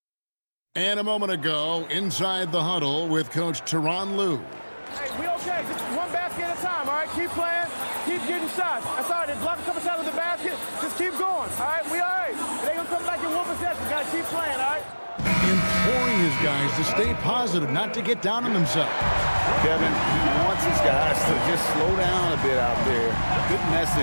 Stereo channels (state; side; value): inverted; both; correlation -1.00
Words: And a moment ago, inside the huddle with Coach Tyronn Lue. Hey, we okay. Just one basket at a time, all right? Keep playing. Keep getting shots. That's all right. They block a couple shots with the basket. Just keep going, all right? We all right. It ain't going to come back in one possession. Got to keep playing, all right? Imploring his guys to stay positive, not to get down on themselves. Kevin, he wants his guys to just slow down a bit out there. Good